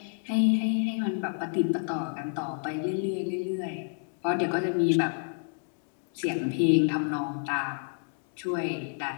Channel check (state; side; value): silent; right; 58 dB below the other